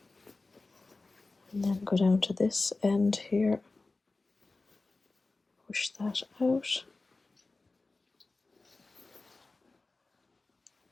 and then go down to this end here, push that out.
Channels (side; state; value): right; quieter; 3.4 dB